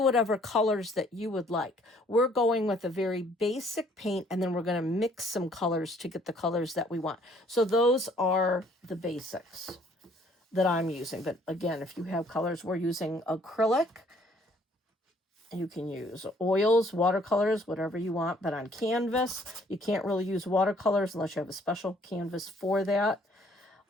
whatever colors that you would like. We're going with a very basic paint, and then we're going to mix some colors to get the colors that we want. So those are the basics that I'm using. But again, if you have colors, we're using acrylic. You can use oils, watercolors, whatever you want, but on canvas, you can't really use watercolors unless you have a special canvas for that.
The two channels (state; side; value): normal; both; correlation 0.61